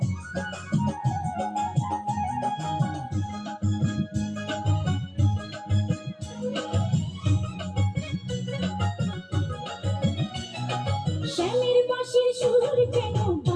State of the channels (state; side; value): identical; both; correlation 1.00